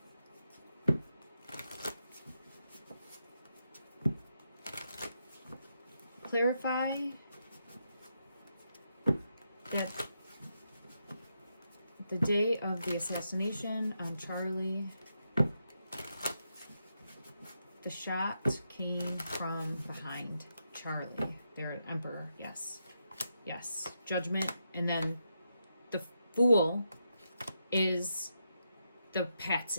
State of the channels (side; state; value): both; inverted; correlation -0.83